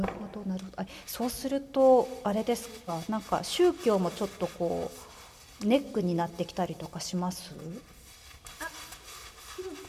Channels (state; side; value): identical; both; correlation 1.00